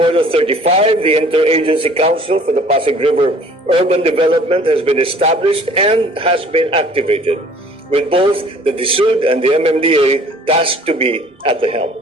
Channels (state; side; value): normal; both; correlation 0.52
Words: 35, the Interagency Council for the Pasig River Urban Development has been established and has been activated, with both the DSUD and the MMDA tasked to be at the helm.